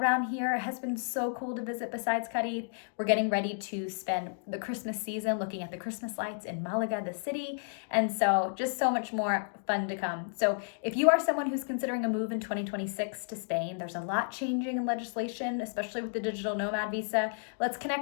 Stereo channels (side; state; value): right; silent; digital silence